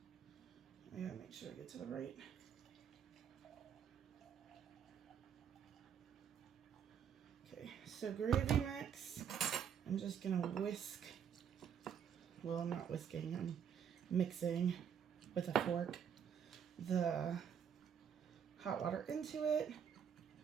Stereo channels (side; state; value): left; quieter; 8.0 dB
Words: I gotta make sure I get to the right. Okay, so gravy mix. I'm just gonna whisk. Well, I'm not whisking, I'm mixing with a fork the hot water into it.